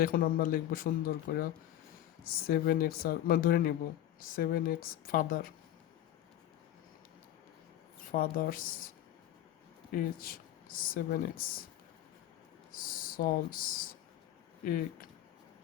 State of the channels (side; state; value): right; quieter; 12.5 dB